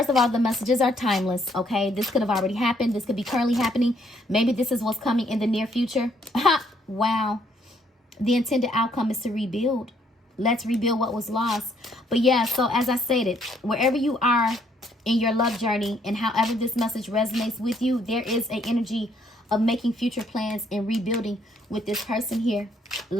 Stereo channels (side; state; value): both; normal; correlation 0.68